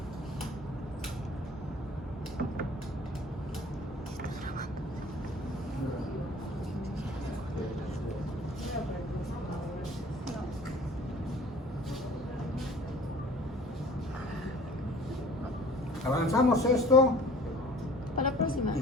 Avanzamos esto Para la próxima. y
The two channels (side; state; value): both; normal; correlation 0.48